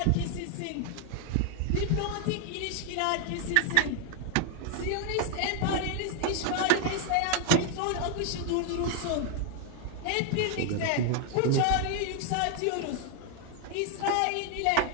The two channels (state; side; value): different; both; correlation 0.00